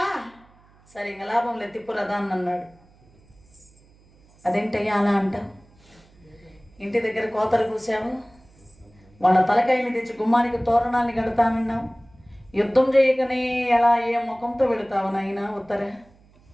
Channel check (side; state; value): right; noise; hum, 29 dB below the sound